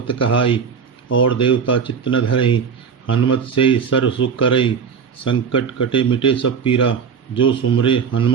कहाई। और देवता चित्त न धरई, हनुमत से ही सर्व सुख करई। संकट कटे मिटे सब पीरा, जो सुमरे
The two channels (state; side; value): quieter; left; 6.4 dB